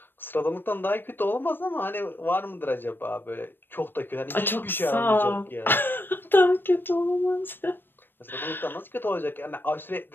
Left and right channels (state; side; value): late; right; 0.096 ms